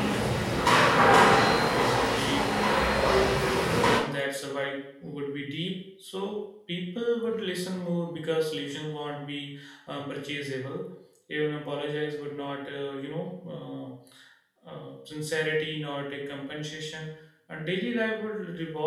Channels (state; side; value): identical; both; correlation 1.00